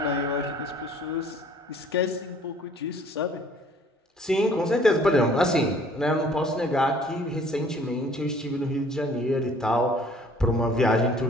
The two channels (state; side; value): normal; both; correlation 0.55